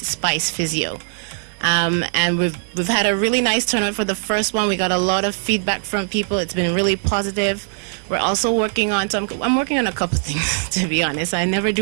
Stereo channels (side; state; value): left; silent; digital silence